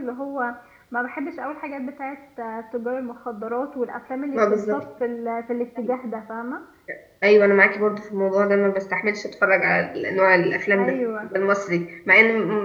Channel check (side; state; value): both; identical; correlation 1.00